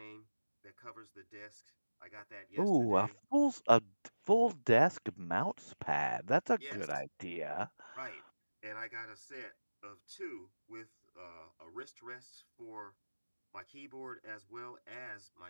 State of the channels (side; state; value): both; inverted; correlation -1.00